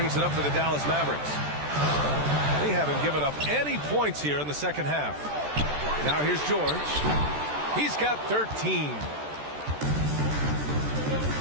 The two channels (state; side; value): late; left; 14 ms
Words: it up for the Dallas Mavericks. They haven't given up any points here in the second half. Now here's George. He's got 13.